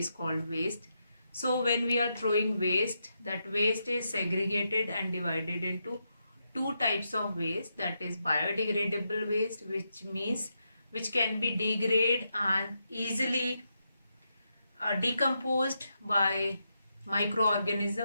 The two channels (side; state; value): both; inverted; correlation -0.84